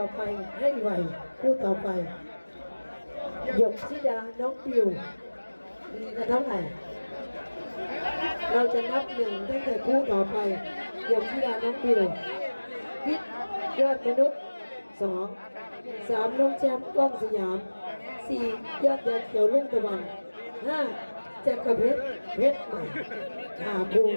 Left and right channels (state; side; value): inverted; both; correlation -1.00